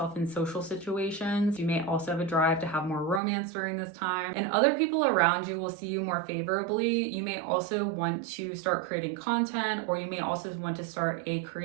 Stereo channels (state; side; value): drops out; left; at 3.2 s